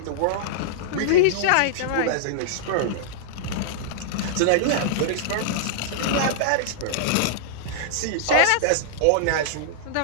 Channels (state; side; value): different; both; correlation -0.02